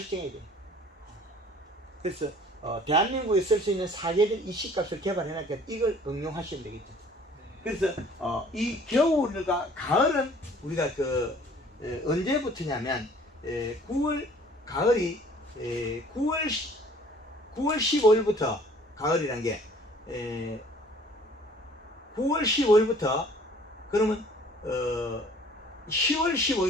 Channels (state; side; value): normal; both; correlation 0.53